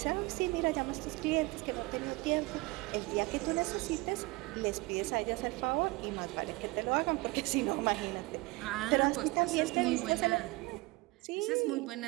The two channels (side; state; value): left; quieter; 23.0 dB